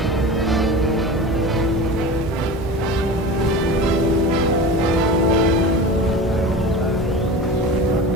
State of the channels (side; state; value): both; normal; correlation 0.32